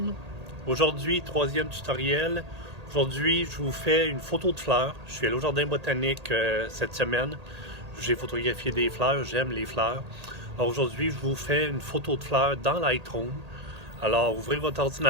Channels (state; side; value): late; left; 1.8 ms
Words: Aujourd'hui, troisième tutoriel. Aujourd'hui, je vous fais une photo de fleurs. Je suis allé au jardin botanique cette semaine. J'ai photographié des fleurs. J'aime les fleurs. Alors aujourd'hui, je vous fais une photo de fleurs dans Lightroom. Alors, ouvrez votre